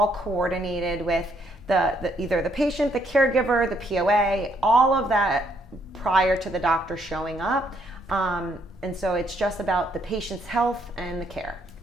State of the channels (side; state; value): both; normal; correlation 0.71